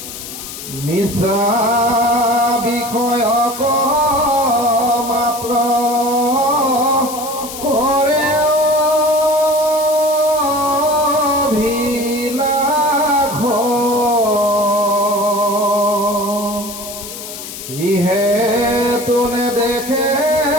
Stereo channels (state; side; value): noise; left; hiss, 11 dB below the sound